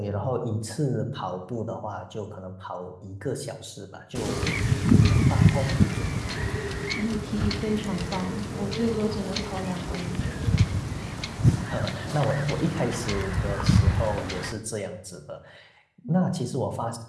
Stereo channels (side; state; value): both; identical; correlation 1.00